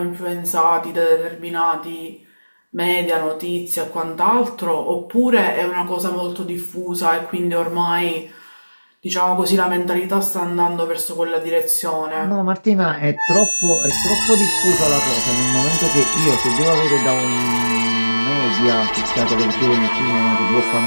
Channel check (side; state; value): both; inverted; correlation -1.00